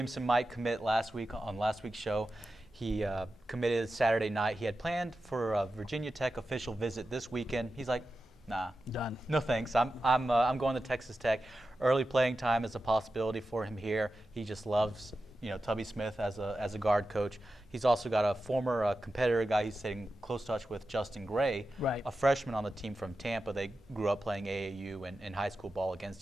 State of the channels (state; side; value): normal; both; correlation 0.92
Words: might commit last week on last week's show. He committed Saturday night. He had planned for a Virginia Tech official visit this weekend. He's like, nah, done. No thanks. I'm going to Texas Tech. Early playing time is a possibility for him here. He just loves, Tubby Smith as a guard coach. He's also got a former competitor guy he's staying in close touch with, Justin Gray, right, a freshman on the team from Tampa. They grew up playing AAU and high school ball